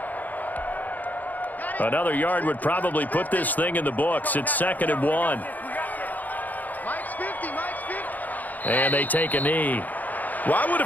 Another yard would probably put this thing in the books. It's 2nd and 1. Mike's 50. And they take a knee. Well, I would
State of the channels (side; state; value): right; late; 0.082 ms